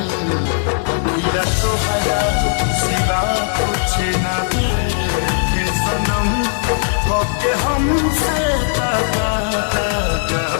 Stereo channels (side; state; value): right; silent; 64 dB below the other